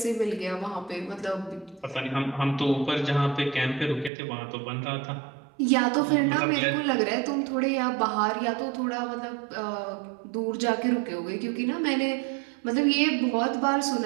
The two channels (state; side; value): drops out; left; at 4.1 s